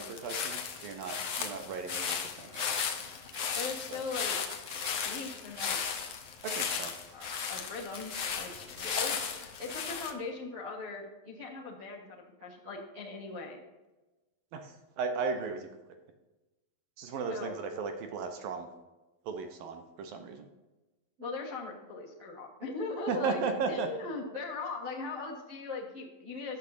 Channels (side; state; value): left; late; 11 ms